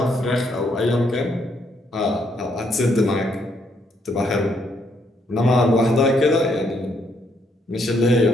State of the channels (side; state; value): both; normal; correlation 0.73